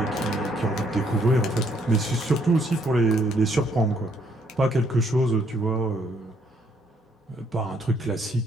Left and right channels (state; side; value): normal; both; correlation 0.69